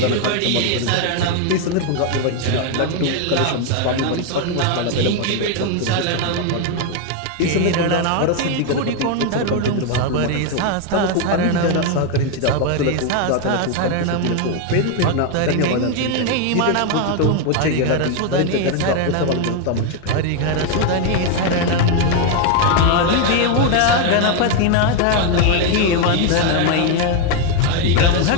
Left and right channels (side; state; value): both; different; correlation 0.01